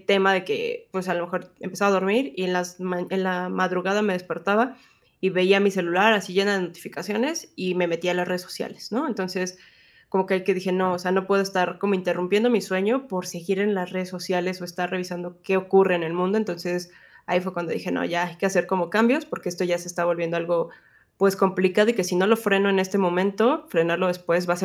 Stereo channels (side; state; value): both; identical; correlation 1.00